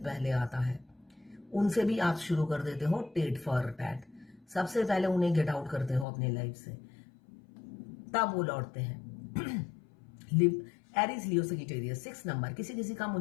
पहले आता है, उनसे भी आप शुरू कर देते हो टीट फॉर टैट, सबसे पहले उन्हें गेट आउट करते हो अपनी लाइफ से, तब वो लौटते हैं। एरीज लियो सजिटेरियस 6 नंबर, किसी किसी का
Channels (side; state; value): right; drops out; at 6.1 s